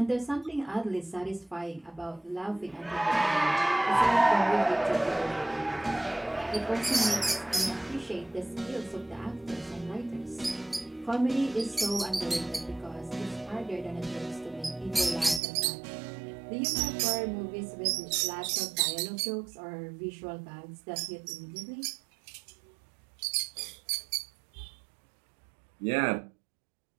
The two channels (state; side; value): drops out; left; at 15.4 s